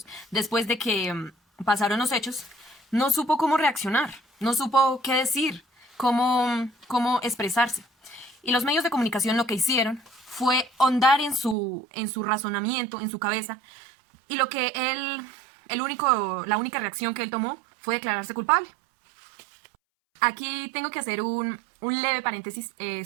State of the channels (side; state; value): left; drops out; at 11.6 s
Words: después de que pasaron los hechos, no supo cómo reaccionar, no supo qué decir, cómo expresarse. Y los medios de comunicación lo que hicieron fue hondar en su razonamiento, en su cabeza, y lo que la única reacción que él tomó fue declararse culpable. Aquí tengo que hacer un leve paréntesis